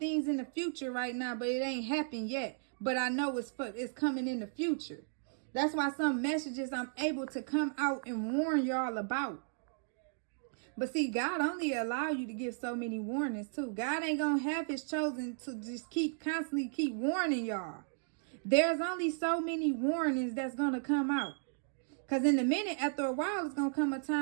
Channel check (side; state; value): left; silent; digital silence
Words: in the future right now, but it ain't happened yet. But I know it's coming in the future. That's why some messages I'm able to come out and warn y'all about. But see, God only allow you to give so many warnings too. God ain't gonna have his chosen to just constantly keep warning y'all. There's only so many warnings that's going to come out. Because in a minute, after a while, it's going to come a